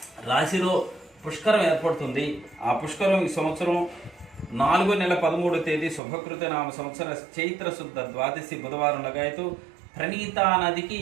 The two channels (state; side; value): drops out; left; at 6.0 s